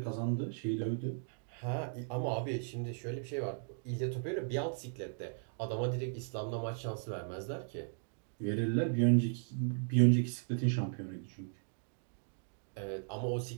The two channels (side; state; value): left; silent; digital silence